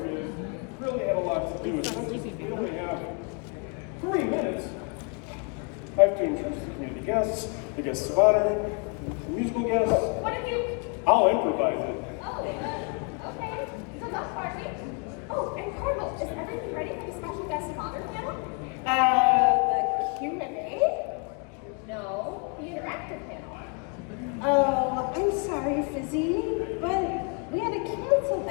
Fizz. Really had a lot to do. Since we only have 3 minutes, I have to introduce the community guests, the guests of honor, the musical guests. What have you? I'll improvise it. Oh, okay. So that's party. Oh, and Carmel, is everything ready for the special guest of honor panel? The Q&A? No, the interactive panel. Oh, I'm sorry, Fizzy, but we had to cancel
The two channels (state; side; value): quieter; right; 35.7 dB